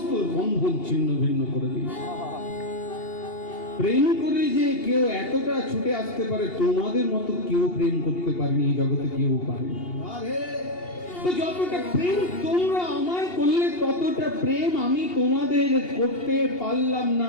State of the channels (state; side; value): late; right; 2.8 ms